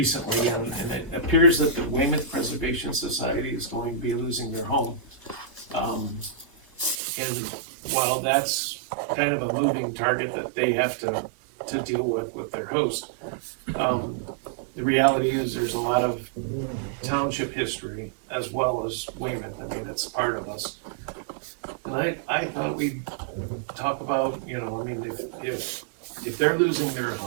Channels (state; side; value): drops out; left; at 7.0 s